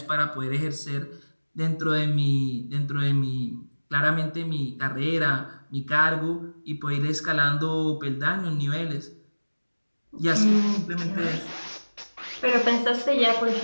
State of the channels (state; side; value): inverted; both; correlation -1.00